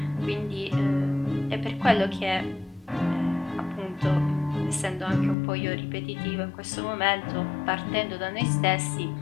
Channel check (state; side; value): drops out; right; at 5.4 s